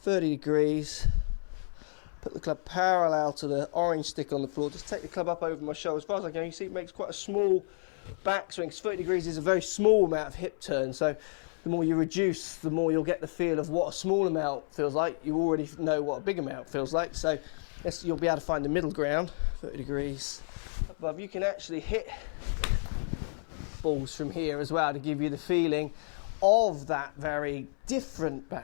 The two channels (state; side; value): silent; right; 57 dB below the other